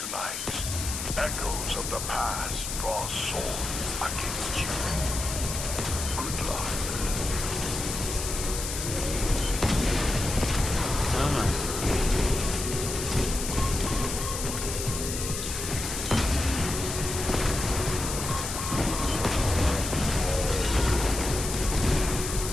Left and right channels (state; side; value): noise; left; hiss, 5 dB below the sound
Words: echoes of the past draw swords against you. Good luck.